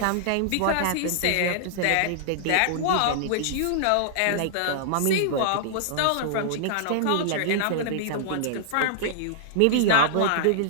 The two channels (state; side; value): different; both; correlation -0.01